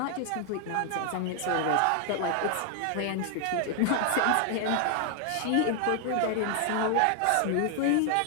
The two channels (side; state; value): both; different; correlation 0.00